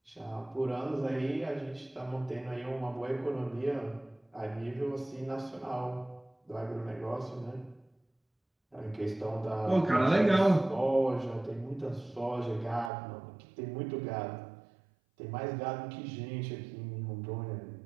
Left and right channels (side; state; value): left; drops out; at 12.9 s